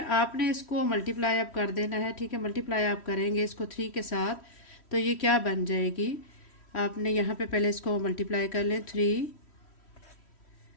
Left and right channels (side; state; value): right; late; 3.1 ms